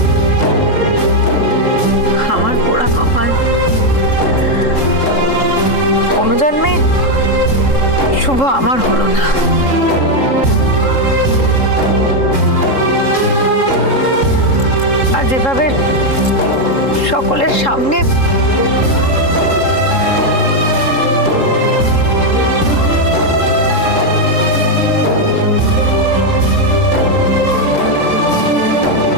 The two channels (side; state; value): right; late; 3.7 ms